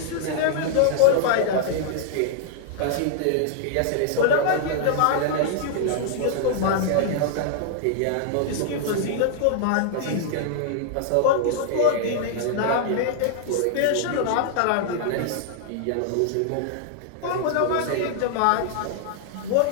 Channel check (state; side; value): different; both; correlation -0.01